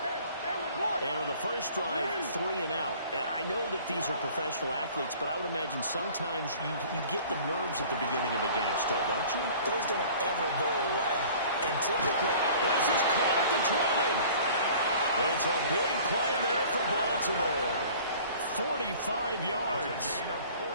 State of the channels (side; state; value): both; inverted; correlation -0.48